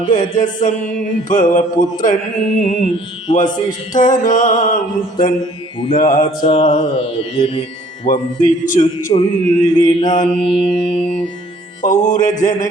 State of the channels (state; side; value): normal; both; correlation 0.57